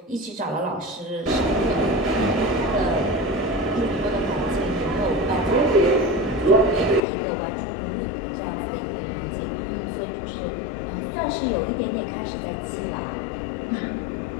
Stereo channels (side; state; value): right; drops out; at 7.0 s